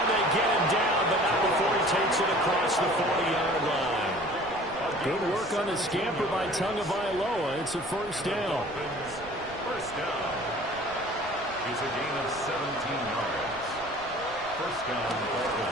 they get him down, but not before he takes it across the 40-yard line. Good work on the scamper by Tagovailoa. It's a 1st down. First down. It's a gain of 17 yards. First down,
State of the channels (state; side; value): noise; right; rumble, 20 dB below the sound